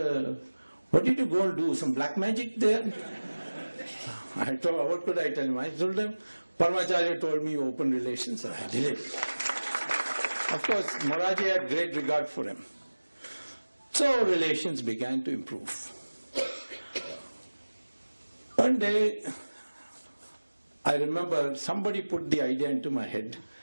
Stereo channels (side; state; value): both; inverted; correlation -1.00